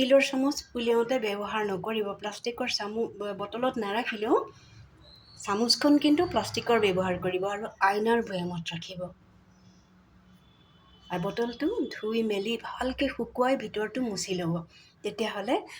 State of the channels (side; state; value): both; identical; correlation 1.00